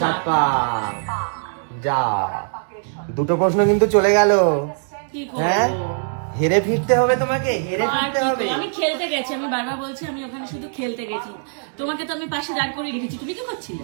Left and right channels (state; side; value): silent; left; 65 dB below the other